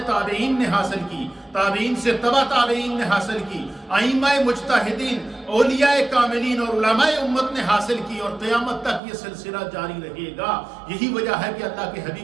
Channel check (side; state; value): left; drops out; at 9.0 s